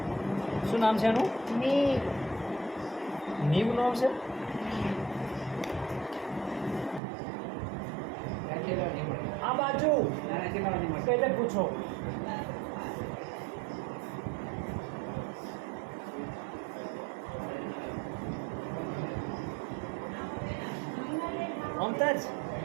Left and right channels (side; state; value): left; drops out; at 7.0 s